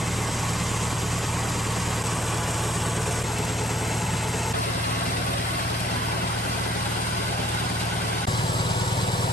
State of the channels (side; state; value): both; normal; correlation 0.61